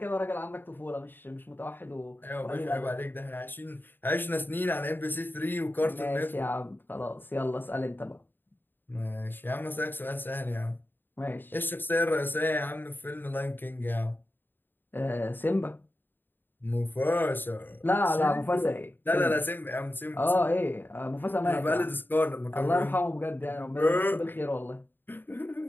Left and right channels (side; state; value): right; late; 0.094 ms